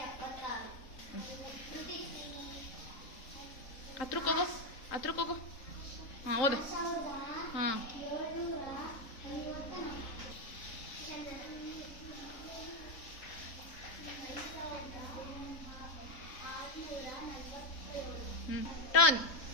ಹತ್ರಕ್ಕೋಗು. ಹಾಂ, ಓದು. ಹಾಂ, ಟರ್ನ್.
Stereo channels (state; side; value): late; right; 3.7 ms